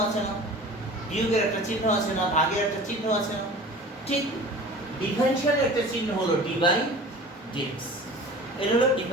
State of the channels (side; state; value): both; normal; correlation 0.40